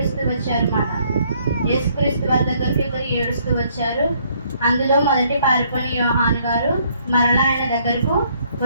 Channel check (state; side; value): inverted; both; correlation -0.66